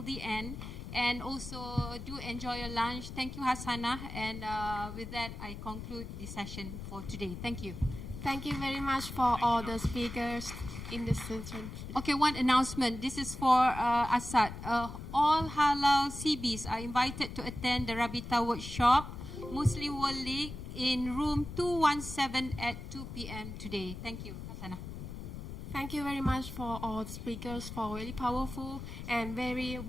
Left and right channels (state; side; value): noise; left; rumble, 9 dB below the sound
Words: the end. And also do enjoy your lunch. Thank you, Hassana. And with that, I conclude the session for today. Thank you. Thank you very much for all the speakers in this session. Okay, one announcement. This is for Assad. All halal CBs are invited to attend the Rabita workshop, Muslim World League, in room 217 at 2 p.m. today. Thank you, Hassana. Thank you very much for all speakers for very powerful and very